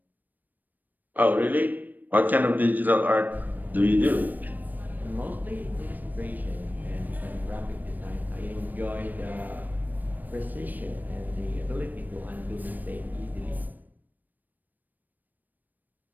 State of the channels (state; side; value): late; left; 0.087 ms